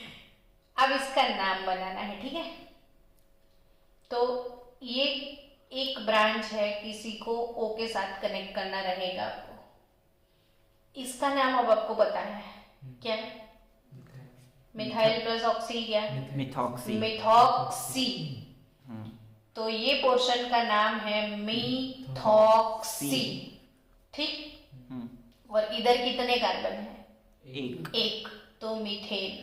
अब इसका नाम बनाना है, ठीक है? तो ये एक ब्रांच है, किसी को O के साथ कनेक्ट करना रहेगा आपको। इसका नाम अब आपको पता है क्या? मिथाइल प्लस ऑक्सी क्या? मिथॉक्सी। मिथॉक्सी। तो ये पोर्शन का नाम है मिथॉक्सी। ठीक? और इधर कितने कार्बन है? एक। तो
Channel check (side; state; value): both; identical; correlation 1.00